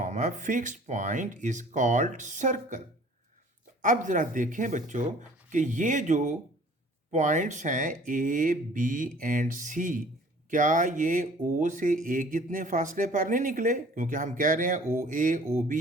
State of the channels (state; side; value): normal; both; correlation 0.51